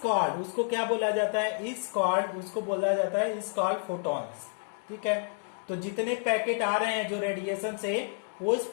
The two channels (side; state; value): right; silent; 58 dB below the other